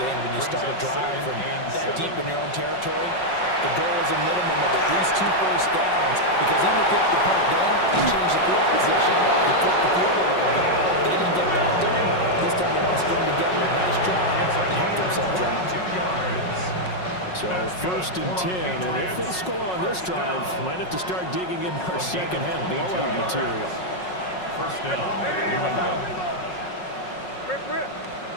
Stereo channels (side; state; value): right; late; 5.5 ms